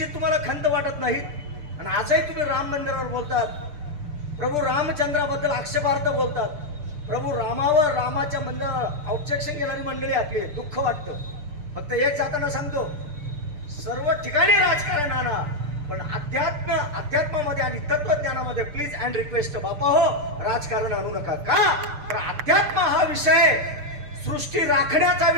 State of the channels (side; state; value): left; late; 6.7 ms